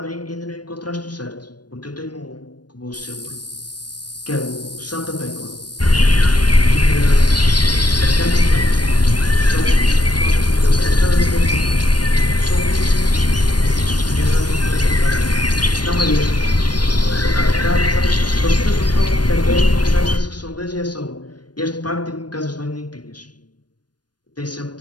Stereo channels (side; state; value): right; late; 0.69 ms